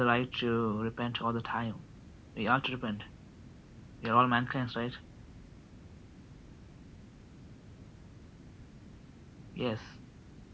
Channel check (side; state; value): both; identical; correlation 1.00